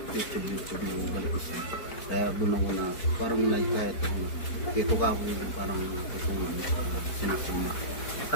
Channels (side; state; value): right; late; 4.6 ms